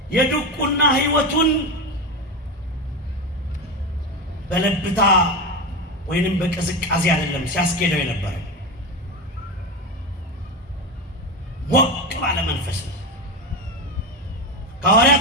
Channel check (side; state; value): both; normal; correlation 0.18